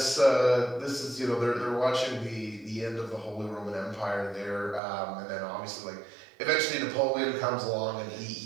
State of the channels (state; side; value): drops out; left; at 4.8 s